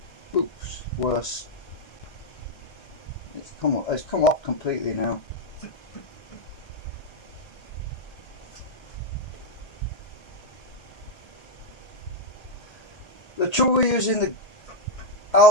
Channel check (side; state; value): right; late; 1.9 ms